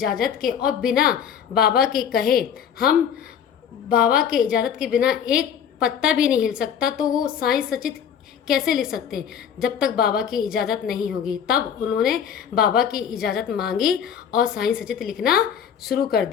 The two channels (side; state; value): right; quieter; 8.3 dB